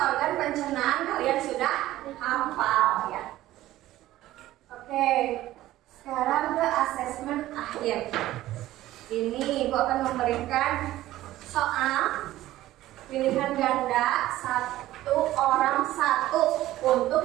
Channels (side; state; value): left; quieter; 15.2 dB